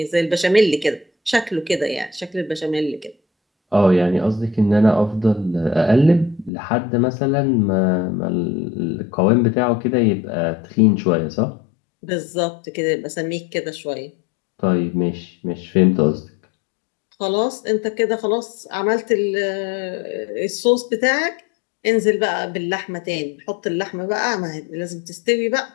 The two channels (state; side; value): drops out; right; at 6.5 s